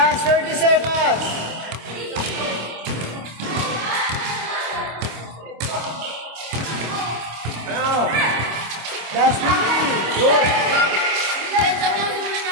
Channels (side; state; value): left; late; 26 ms